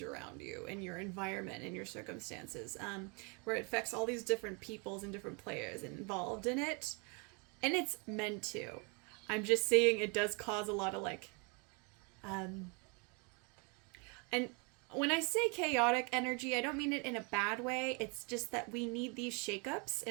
around you and your environment and your circumstances, where it affects all these different peoples and different players involved in it. And it's meant to. I'm just saying it does cause a lot of like, and when I say chaotic energy, I don't mean it in a bad way. It's just that we need these shakeups.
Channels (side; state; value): left; quieter; 33.0 dB